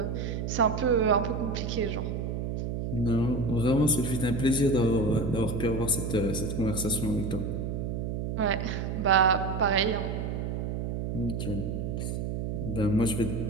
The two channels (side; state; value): right; noise; hum, 3 dB below the sound